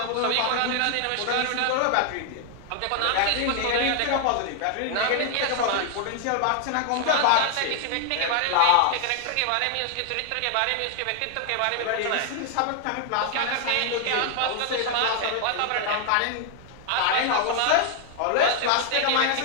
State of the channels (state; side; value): different; both; correlation 0.00